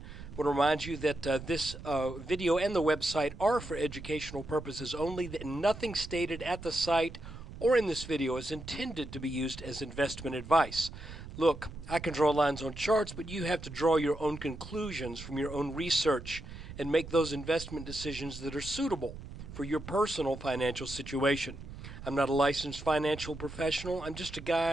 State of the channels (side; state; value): right; noise; rumble, 12 dB below the sound